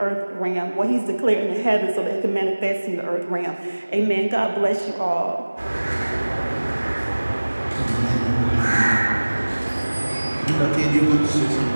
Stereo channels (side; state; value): both; inverted; correlation -1.00